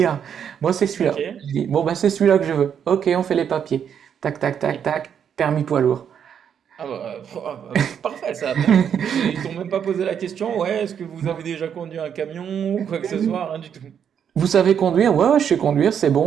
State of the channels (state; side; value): quieter; left; 8.2 dB